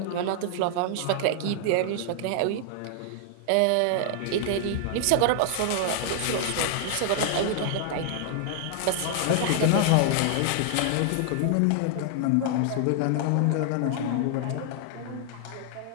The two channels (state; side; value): different; both; correlation 0.00